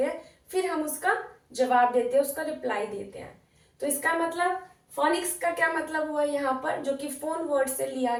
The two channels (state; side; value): identical; both; correlation 1.00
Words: हैं, फिर हम उसका जवाब देते हैं, उसका रिप्लाई देते हैं। तो इसका मतलब फोनिक्स का क्या मतलब हुआ यहाँ पर, जो कि फोन वर्ड से लिया